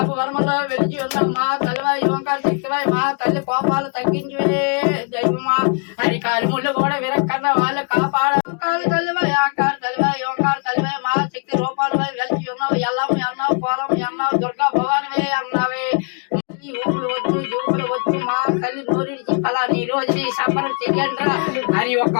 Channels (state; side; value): quieter; right; 37.5 dB